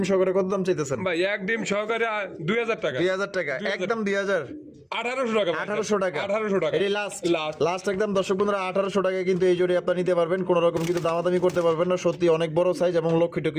সহকারে কত দাম চাইতেছেন ভাই এক ডিম সহকারে 2000 টাকা। 2000 টাকা 2000 একদম 2000 1800 টাকা ভাই। 1800 টাকা 1800 টাকা। এটাই লাস্ট লাস্ট। লাস্ট একদম দর্শক বন্ধুরা 1800 টাকায় কিন্তু এই জোড়ি আপনারা নিতে পারবেন কোনো রকম কিন্তু দামাদামি করতে পারবেন না সত্যি অনেক বড় সাইজ এবং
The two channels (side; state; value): both; identical; correlation 1.00